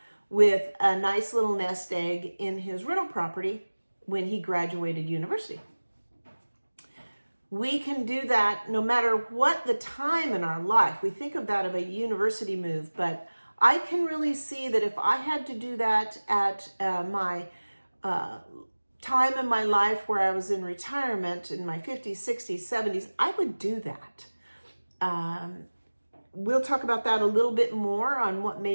with a nice little nest egg in his rental property when he graduated university. We can do that no matter what the time in our life. We think of that of a university move, but I can really see that if I had to do that at my time in my life where I was in retirement in my 50s, 60s, 70s, I would do that. We'll talk about that a little bit more on what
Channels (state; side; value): inverted; both; correlation -1.00